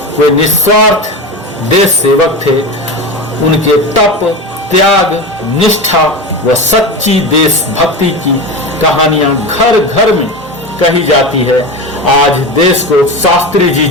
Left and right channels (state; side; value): normal; both; correlation 0.24